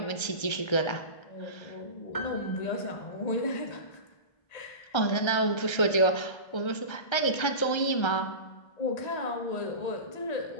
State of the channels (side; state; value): right; late; 1.3 ms